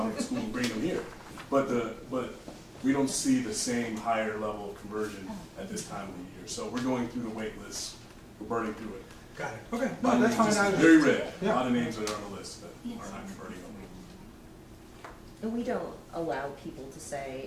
of school and bringing them here. But we don't see the same higher level of conversion at this time of the year. So we're going through the wait list. We're burning through it. Got it, okay, A lot no, of that's names, fine. just very red. A Yeah. lot of names that are on the list that are not converting over. And we don't allow people to say,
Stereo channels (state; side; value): identical; both; correlation 1.00